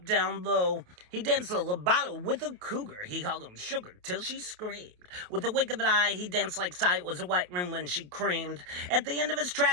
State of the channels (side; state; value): left; late; 28 ms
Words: down low. He danced a legato with a cougar. He hugged him sugar till she screamed. With a wink of an eye, he danced like sight was a white room when she creamed. At the end of his